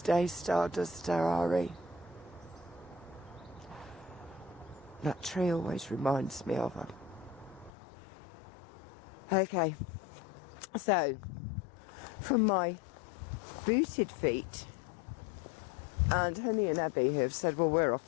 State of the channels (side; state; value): right; drops out; at 7.7 s